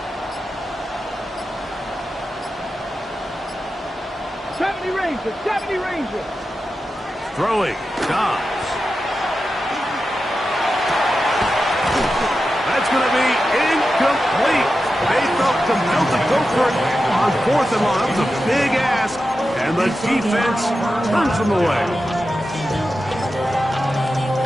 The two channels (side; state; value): both; normal; correlation 0.91